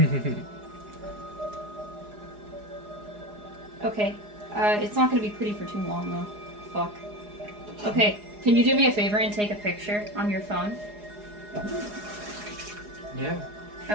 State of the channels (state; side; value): late; left; 4.8 ms